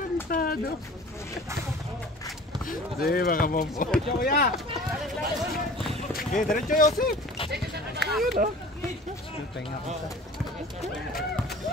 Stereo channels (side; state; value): both; normal; correlation 0.43